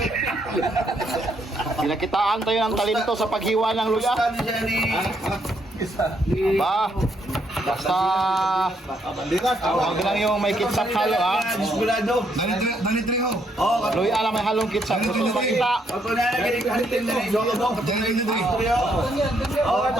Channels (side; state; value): both; normal; correlation 0.73